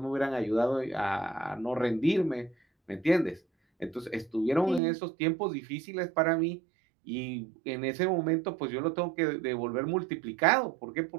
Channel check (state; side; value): drops out; left; at 4.8 s